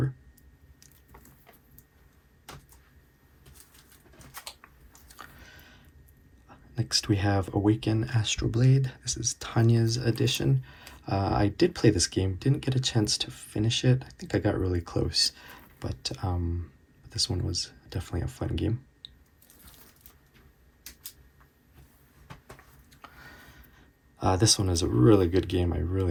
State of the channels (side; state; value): both; identical; correlation 1.00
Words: Next we have Awaken Astral Blade. This is Tanya's edition. I did play this game, didn't get a chance to finish it. I think I got really close, but this one was definitely a fun game. This one is a really good game. I